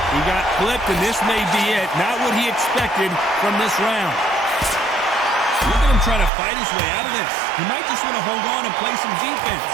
He got clipped, and this may be it. Not what he expected from this round. Look at him trying to fight his way out of this. He might just want to hold on and play some defense.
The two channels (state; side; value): drops out; left; at 6.3 s